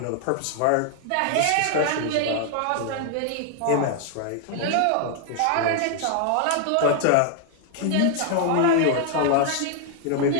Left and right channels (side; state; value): both; different; correlation 0.00